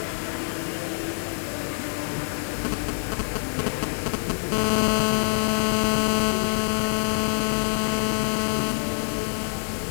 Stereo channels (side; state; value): right; silent; 61 dB below the other